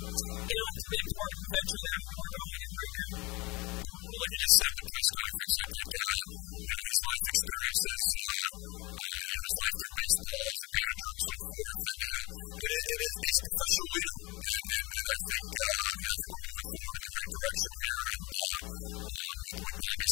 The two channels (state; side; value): quieter; right; 23.9 dB